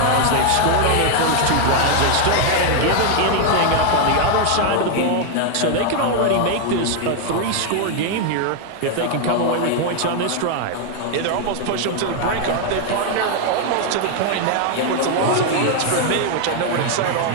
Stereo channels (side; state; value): both; different; correlation 0.00